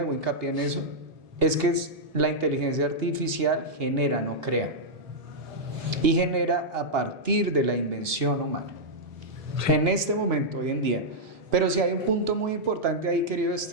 hincapié en eso, es que la inteligencia artificial genera, no crea, y genera a partir de la invención humana, en este momento, hoy en día. Pero sí hay un punto muy importante ahí, querido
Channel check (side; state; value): left; late; 1.5 ms